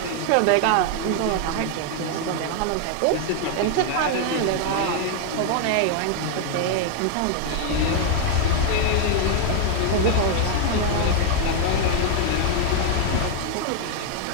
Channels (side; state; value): both; different; correlation 0.01